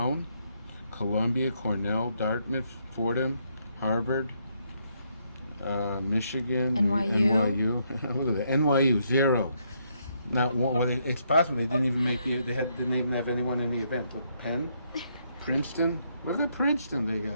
Columbia, Cornell, Dartmouth, Fordham, Harvard, Michigan, NYU. Look at that, NYU 0. Not one. Well, it's possible they didn't even make the. Didn't even have anyone in the event. Look, Penn, Princeton. Look at Princeton.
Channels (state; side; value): inverted; both; correlation -0.74